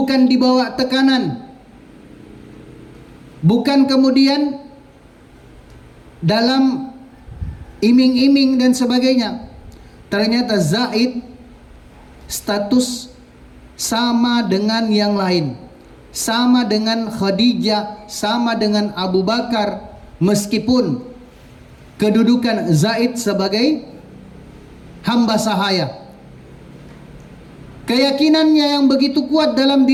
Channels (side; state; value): both; identical; correlation 1.00